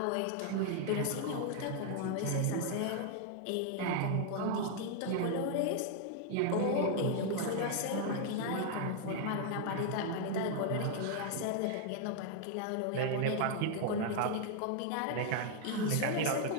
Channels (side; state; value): both; different; correlation 0.00